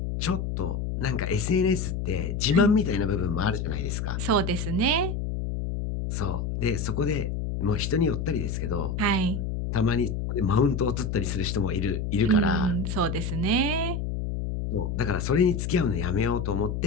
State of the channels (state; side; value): noise; left; hum, 2 dB below the sound